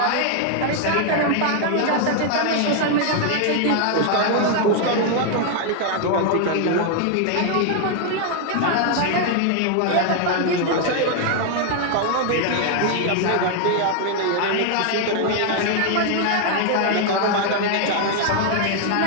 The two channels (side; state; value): both; different; correlation 0.00